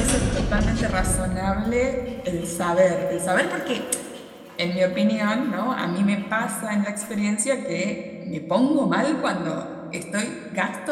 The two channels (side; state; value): both; identical; correlation 1.00